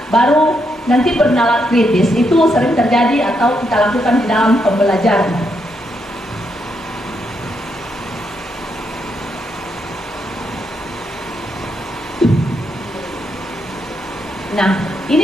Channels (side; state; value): both; normal; correlation 0.79